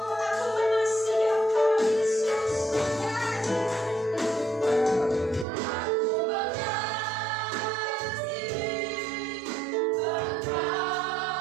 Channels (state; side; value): drops out; left; at 5.5 s